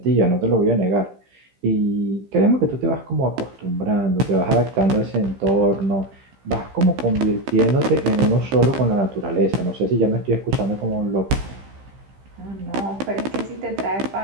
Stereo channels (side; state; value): left; late; 15 ms